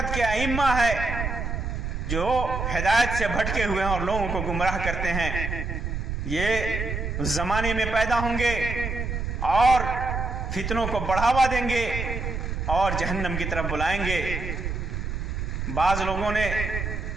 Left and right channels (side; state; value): right; noise; rumble, 3 dB below the sound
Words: के अइम्मा है जो हिदायत से भटके हुए हैं और लोगों को गुमराह करते हैं। ये ज़माने में पैदा होंगे और फितनों को बढ़ावा देंगे और जहन्नम की तरफ बुलाएंगे। बाज़ लोगों ने